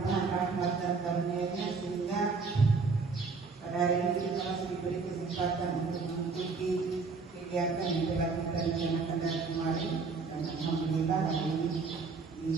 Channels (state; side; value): quieter; left; 4.5 dB